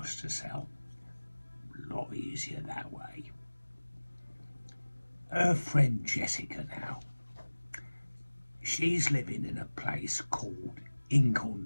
to sell. A lot easier that way. Her friend Jessica now, she's living in a place called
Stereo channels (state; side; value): inverted; both; correlation -1.00